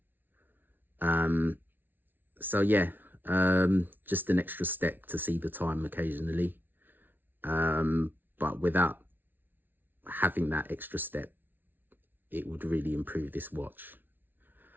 So yeah, just an extra step to see the time occasionally. But without having that extra step, it would really improve this watch.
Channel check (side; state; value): left; late; 0.093 ms